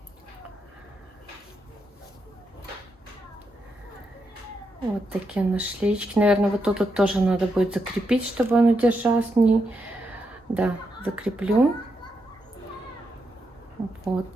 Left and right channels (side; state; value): both; normal; correlation 0.83